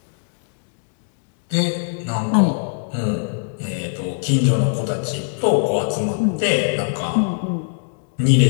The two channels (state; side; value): silent; right; 65 dB below the other